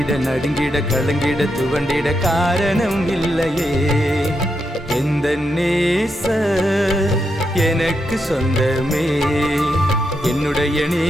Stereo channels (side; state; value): both; normal; correlation 0.83